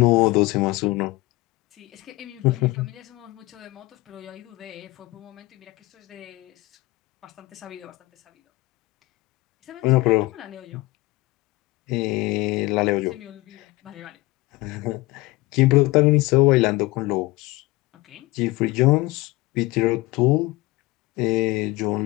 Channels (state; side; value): quieter; right; 21.2 dB